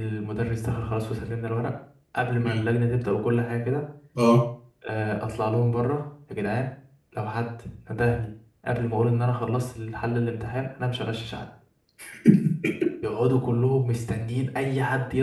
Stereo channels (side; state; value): both; identical; correlation 1.00